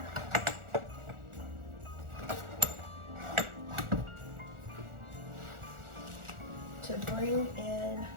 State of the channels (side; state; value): left; late; 1.4 ms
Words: To bring in